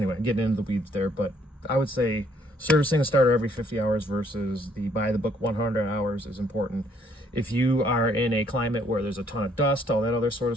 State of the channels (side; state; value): both; normal; correlation 0.66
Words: getting into the weeds there, but I would say servicing a starter every 50 hours versus the by-the-book 100 hours is important. If you are in a climate where there's a ton of dust, all that other sort